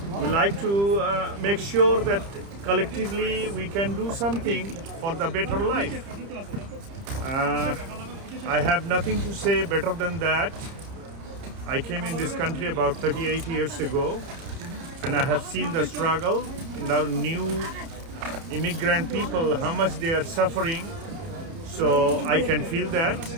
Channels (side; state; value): left; late; 30 ms